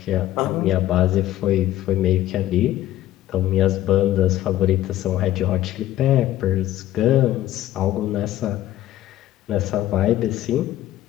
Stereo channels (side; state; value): right; quieter; 13.8 dB